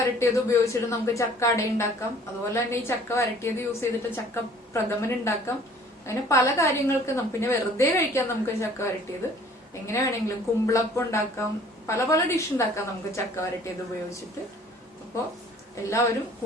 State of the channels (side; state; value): both; normal; correlation 0.53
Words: ഉപയോഗിച്ചിട്ട് നമുക്ക് ചക്ക അട ഉണ്ടാക്കാം. അതുപോലെ തന്നെ ഈ ചക്ക വരട്ടിയത് യൂസ് ചെയ്തിട്ട് ചക്ക പ്രഥമൻ ഉണ്ടാക്കാം. അങ്ങനെ പല കാര്യങ്ങൾക്ക് പിന്നെ വെറുതെ കഴിക്കാം നമുക്ക് ചക്ക വരട്ടിയത്. എങ്ങനെ വേണമെങ്കിലും കുമ്പിളപ്പം ഉണ്ടാക്കാം, പല പല ഡിഷ് ഉണ്ടാക്കാം നമുക്ക് ചക്ക വരട്ടിയത് ഉപയോഗിച്ചിട്ട്. അപ്പോൾ എല്ലാവരും